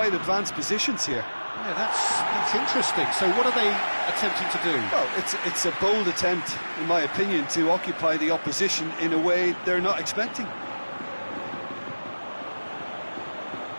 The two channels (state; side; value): inverted; both; correlation -1.00